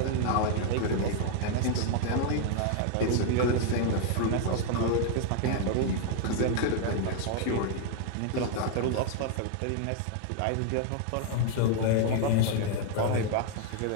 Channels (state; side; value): different; both; correlation 0.00